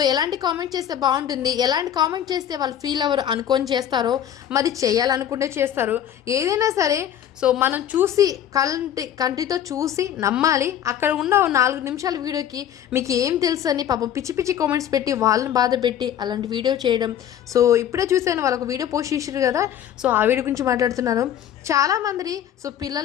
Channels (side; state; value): right; quieter; 10.3 dB